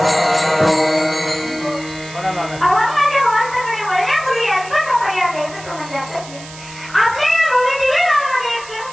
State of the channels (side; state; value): right; noise; hiss, 17 dB below the sound